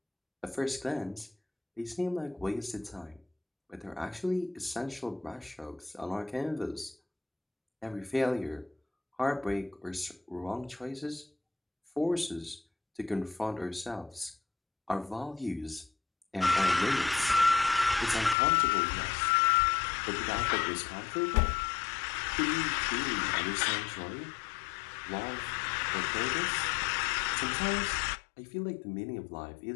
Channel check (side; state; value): right; drops out; at 18.4 s